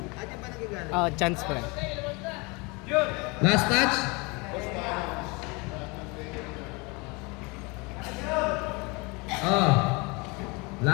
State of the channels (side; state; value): right; quieter; 27.8 dB